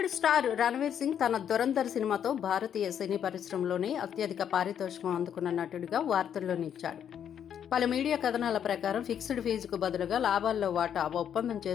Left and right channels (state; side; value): quieter; right; 8.9 dB